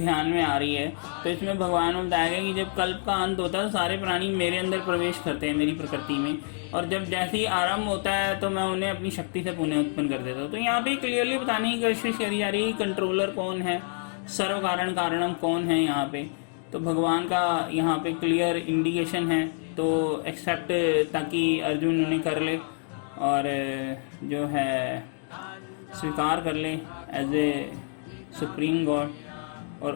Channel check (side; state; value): right; silent; 57 dB below the other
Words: में आ रही है। तो इसमें भगवान ने बताया कि जब कल्प का अंत होता है तो सारे प्राणी मेरे अंदर प्रवेश करते हैं, मेरी प्रकृति में, और जब जैसे ही आरंभ होता है तो मैं उन्हें अपनी शक्ति से पुनः उत्पन्न कर देता हूँ। तो यहाँ पे क्लियरली बताने की कोशिश करी जा रही है कंट्रोलर कौन है, सर्व कारण कारणम कौन है यहाँ पे। तो भगवान का यहाँ पे क्लियर इंडिकेशन है। तो एक्सेप्ट ताकि अर्जुन उन्हें कर ले और जो है स्वीकार कर ले एज ए सुप्रीम गॉड, और